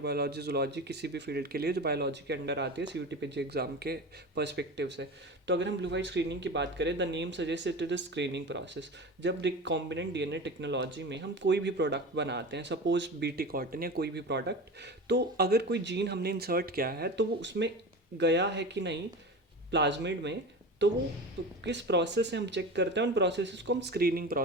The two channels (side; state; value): both; normal; correlation 0.30